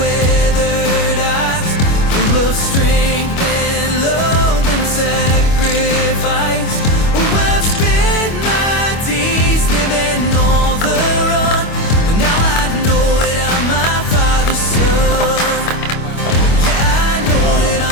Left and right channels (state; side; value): late; right; 25 ms